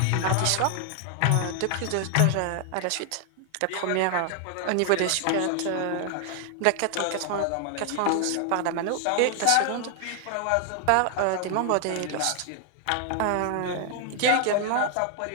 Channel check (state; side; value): different; both; correlation 0.00